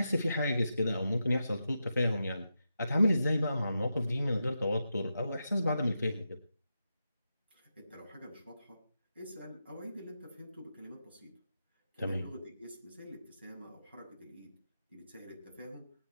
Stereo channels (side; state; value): both; inverted; correlation -0.88